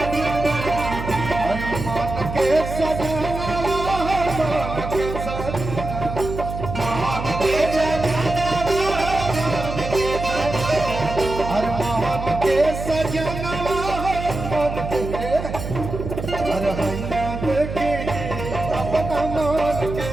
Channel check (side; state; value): right; noise; hum, 7 dB below the sound